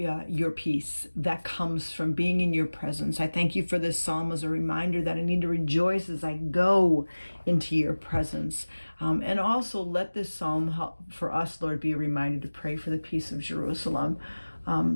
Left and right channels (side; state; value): both; inverted; correlation -1.00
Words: peace that comes from being in your presence. I thank you for this psalm as a reminder that I need to rejoice as I go into your presence. And also let this psalm help for us, Lord, be a reminder to pray for the peace of Jerusalem.